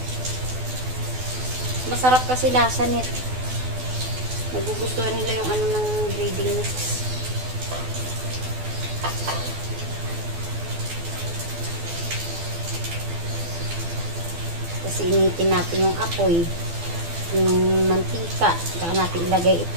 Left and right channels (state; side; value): late; left; 12 ms